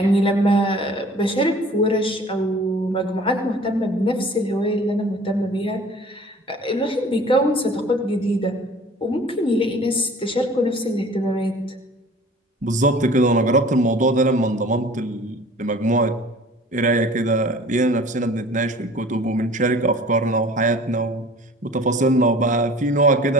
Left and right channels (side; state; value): both; normal; correlation 0.47